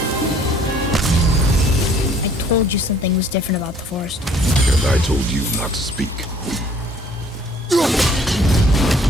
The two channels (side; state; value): both; normal; correlation 0.57